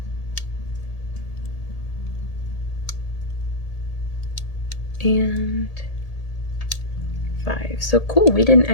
And 5. So cool, we didn't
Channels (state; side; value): late; right; 1.8 ms